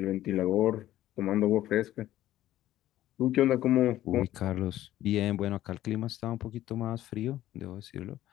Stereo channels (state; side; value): quieter; right; 13.8 dB